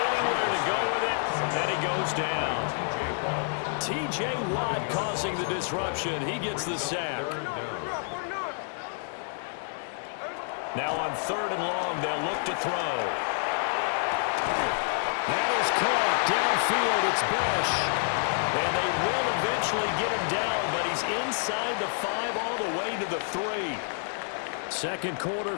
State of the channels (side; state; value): right; silent; digital silence